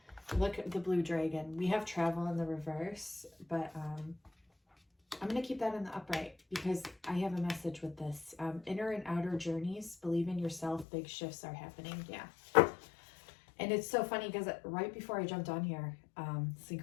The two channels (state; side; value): drops out; right; at 10.9 s